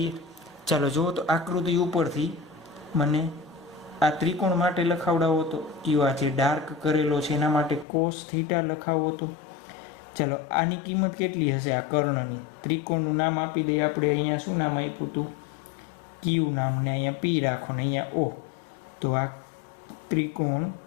ચાલો જુઓ તો આકૃતિ ઉપરથી મને આ ત્રિકોણ માટે લખાવડાવો તો કયો આ જે ડાર્ક કરેલો છે એના માટે cos થીટા લખાવો તો. ચાલો આની કિંમત કેટલી હશે? આ કર્ણની ત્રિકોણનું નામ આપી દઈએ આપણે. અહીંયા શું નામ આપ્યું હતું? Q નામ, ને અહીંયા P રાખો ને અહીંયા O. તો આ ત્રિકોણ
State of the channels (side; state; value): right; drops out; at 7.9 s